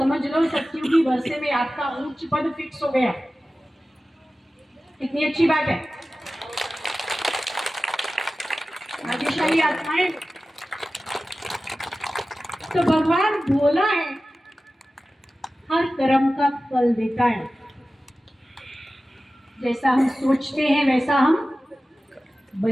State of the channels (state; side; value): normal; both; correlation 0.95